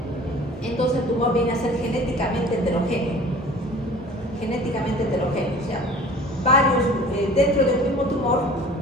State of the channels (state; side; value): normal; both; correlation 0.45